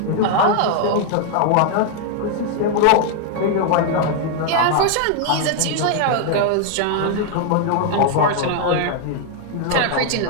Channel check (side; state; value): both; different; correlation 0.00